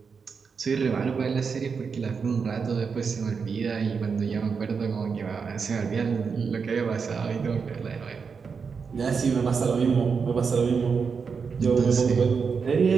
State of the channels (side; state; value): left; quieter; 5.6 dB